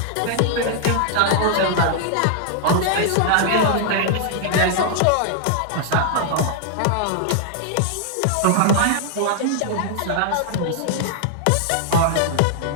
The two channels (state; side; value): different; both; correlation -0.01